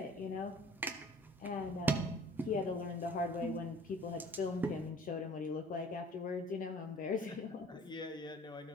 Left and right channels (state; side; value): normal; both; correlation 0.49